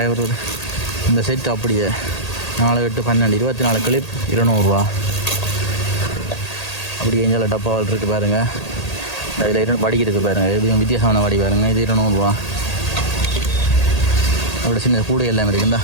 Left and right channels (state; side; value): late; right; 1.8 ms